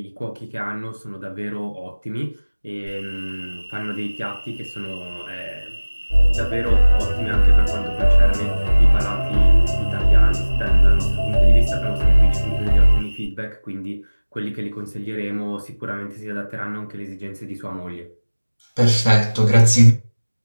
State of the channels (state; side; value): inverted; both; correlation -1.00